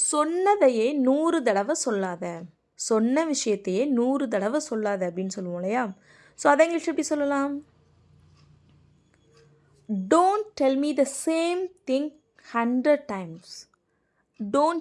100 தடவை சொல்லாத. சொன்ன விஷயத்தையே 100 தடவை சொல்லாத அப்படின்னு சொல்லுவோம் இல்லையா? ஸோ அதை இங்கிலீஷ் எப்படி சொல்லலாம்? Don't tell me the same thing 100 times. Don't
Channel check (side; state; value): both; identical; correlation 1.00